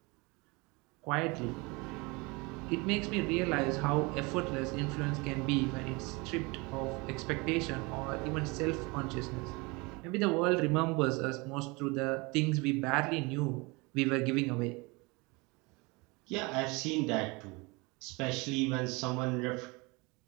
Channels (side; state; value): left; quieter; 26.5 dB